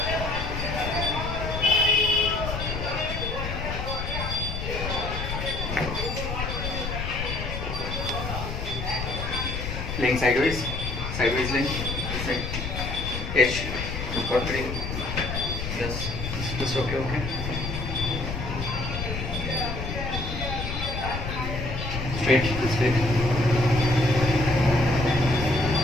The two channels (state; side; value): noise; left; rumble, 5 dB below the sound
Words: Laying sideways. Sideways laying. This side. H. Got 3. Yes. Just okay, okay. Straight, straight.